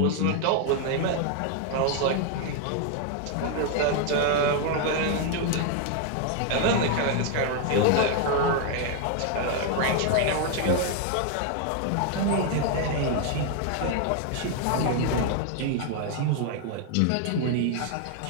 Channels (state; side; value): different; both; correlation 0.00